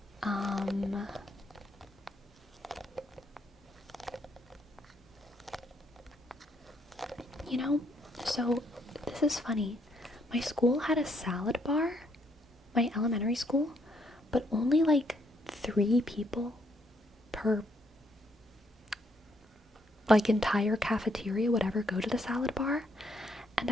So this is funny. My school had a salad bar, my elementary school, but only like 3 people per like entire cafeteria would ever go to the salad bar. And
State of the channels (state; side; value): normal; both; correlation 0.72